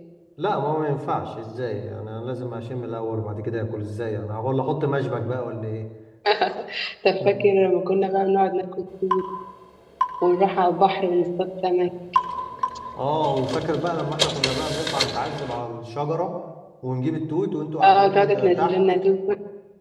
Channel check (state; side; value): identical; both; correlation 1.00